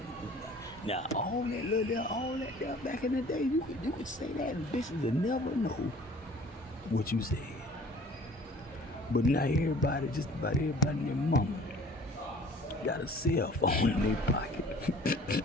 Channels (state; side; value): normal; both; correlation 0.50